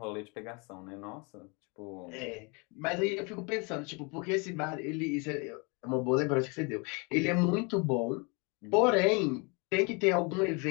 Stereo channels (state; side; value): quieter; right; 31.3 dB